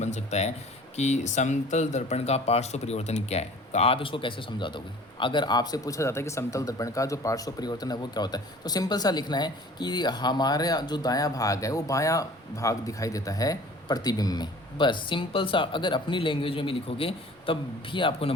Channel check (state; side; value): normal; both; correlation 0.47